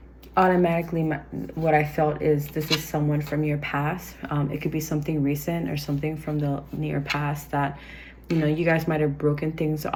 automatically what I felt is this is someone from your past. It could be something recent or something from the near past that, you know, you guys might have broken things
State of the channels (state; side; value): identical; both; correlation 1.00